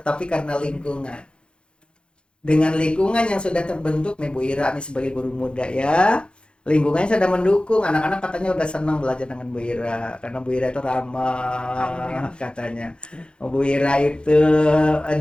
karena lingkungan. Dengan lingkungan yang sudah terbentuk nih Bu Ira nih sebagai guru muda ya, lingkungannya sudah mendukung, anak-anak katanya udah senang belajar dengan Bu Ira karena Bu Ira itu ramah katanya. Bu Ira itu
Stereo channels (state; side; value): late; right; 0.054 ms